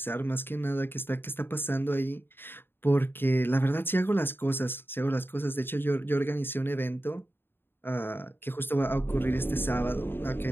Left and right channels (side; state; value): right; late; 0.10 ms